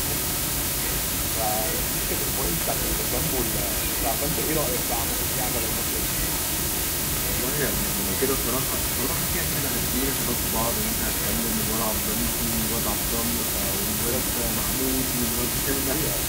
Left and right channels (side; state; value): both; identical; correlation 1.00